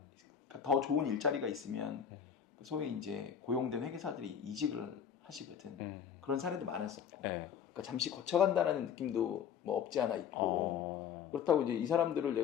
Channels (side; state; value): right; quieter; 8.0 dB